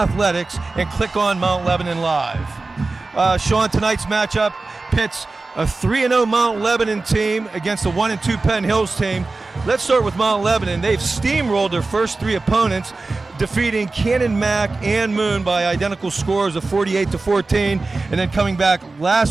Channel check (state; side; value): quieter; left; 3.5 dB